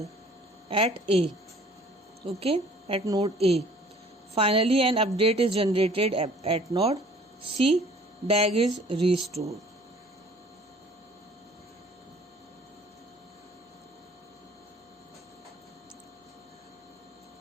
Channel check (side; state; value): both; normal; correlation 0.53